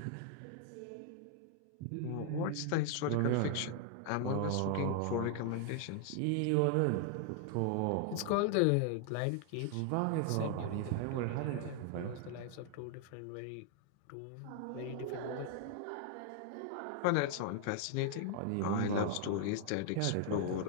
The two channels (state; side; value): different; both; correlation 0.00